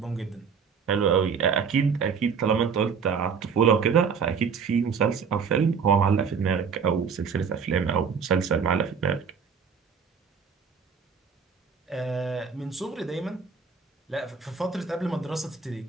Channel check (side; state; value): left; quieter; 6.1 dB